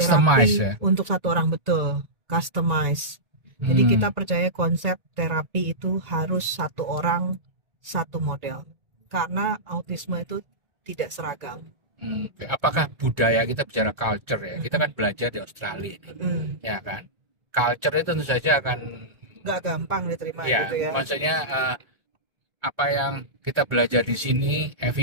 terapi ya? untuk satu orang, betul, customize. Jadi kita percaya konsep terapi itu harus satu orang satu model karena autisme itu tidak seragam. Oke. Apakah budaya, kita bicara culture ya? Kita kan belajar di Australia ini, ya kan? Culture itu tentu saja akan Nggak gampang diterima ya, gitu ya. maksudnya apa yang kita belajar di sini,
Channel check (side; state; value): left; late; 1.8 ms